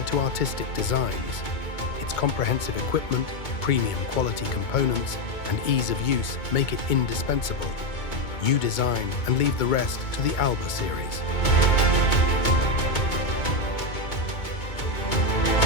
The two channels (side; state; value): right; late; 2.2 ms